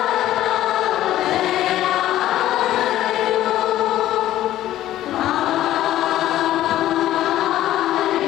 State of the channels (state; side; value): quieter; right; 13.5 dB